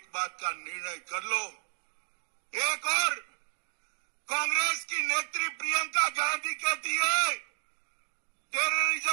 बात का निर्णय कर लो। एक और कांग्रेस की नेत्री प्रियंका गांधी कहती है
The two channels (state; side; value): silent; left; digital silence